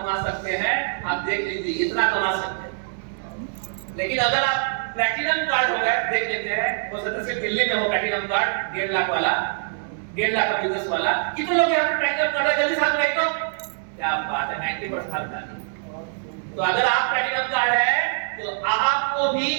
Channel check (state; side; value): silent; left; 63 dB below the other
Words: सकते हैं, आप देख लीजिए, इतना कमा सकते हैं। लेकिन अगर आप प्लैटिनम कार्ड हो गए, देख लेते हैं, हो सकता है सिर्फ दिल्ली में हो प्लैटिनम कार्ड 1.5 लाख वाला, 1.5 लाख का बिजनेस वाला। कितने लोग यहाँ पे प्लैटिनम कार्ड है? जल्दी साथ में, क्या बात है, 90% का। तो अगर आप प्लैटिनम कार्ड है तो आपको भी